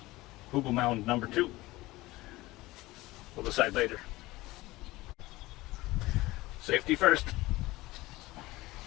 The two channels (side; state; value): right; quieter; 19.4 dB